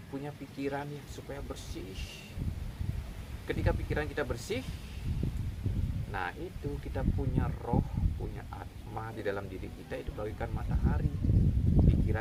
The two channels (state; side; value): identical; both; correlation 1.00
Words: punya pikiran ya supaya bersih. Ketika pikiran kita bersih, nah itu kita punya roh, punya atma di dalam diri kita, itu bagaikan matahari.